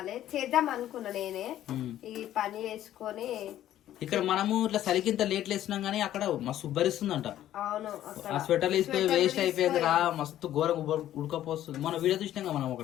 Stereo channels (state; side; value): quieter; right; 12.5 dB